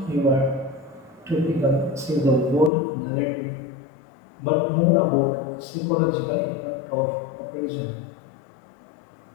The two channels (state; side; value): drops out; right; at 2.7 s